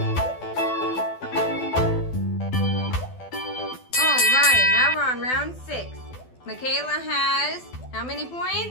All right, now we're on round 6. Makayla has how many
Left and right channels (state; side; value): late; right; 12 ms